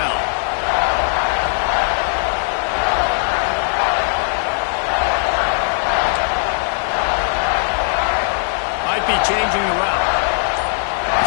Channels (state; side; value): silent; right; digital silence